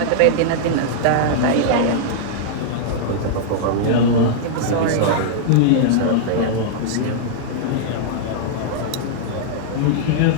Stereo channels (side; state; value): both; different; correlation -0.01